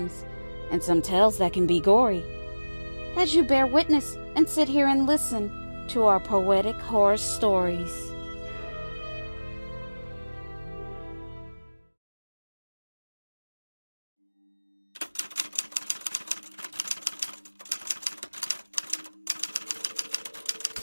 and some tales that can be gory. As you bear witness and sit here and listen to our poetic horror stories.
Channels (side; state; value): both; inverted; correlation -1.00